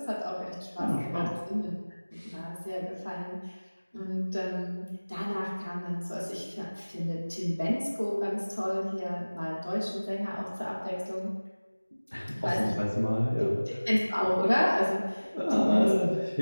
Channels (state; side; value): inverted; both; correlation -1.00